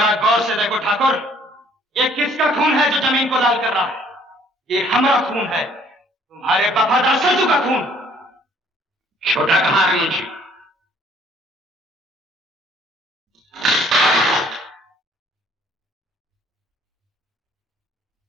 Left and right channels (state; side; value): normal; both; correlation 0.60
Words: गौर से देखो ठाकुर, ये किसका खून है जो जमीन को लाल कर रहा है? ये हमारा खून है, तुम्हारे वफादार सरजू का खून। छोटा कहां है मुंशी?